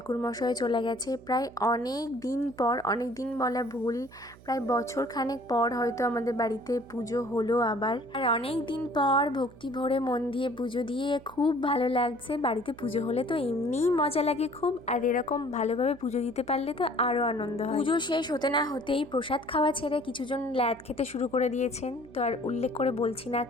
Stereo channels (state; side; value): noise; right; hum, 22 dB below the sound